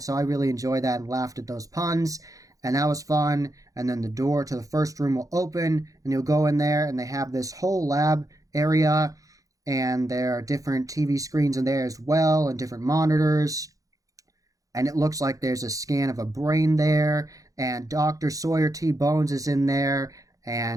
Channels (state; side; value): late; left; 0.17 ms